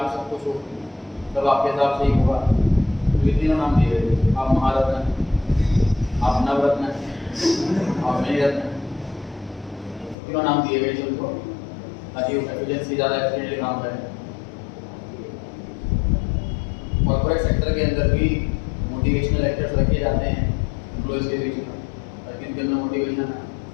सब कुछ हो, तब आपके हिसाब से ही होगा। तो ये तीनों नाम दिए गए, आप महारत्न, आप नवरत्न, आप मणिरत्न, तीनों नाम दिए गए सबको, ताकि एफिशिएंसी ज़्यादा एफिशिएंटली काम करें। कॉर्पोरेट सेक्टर के अंदर भी मोटिवेशनल लेक्चर्स रखे जाते हैं एम्प्लॉयज़ के बीच में, ताकि इनके अंदर मोटिवेशन है।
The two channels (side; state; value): right; drops out; at 10.2 s